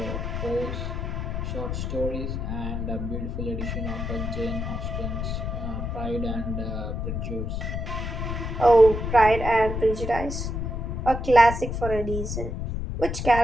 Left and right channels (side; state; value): left; noise; rumble, 3 dB below the sound